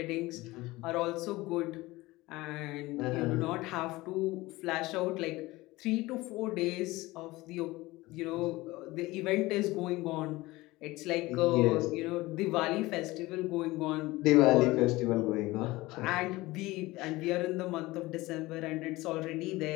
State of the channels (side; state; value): right; quieter; 19.9 dB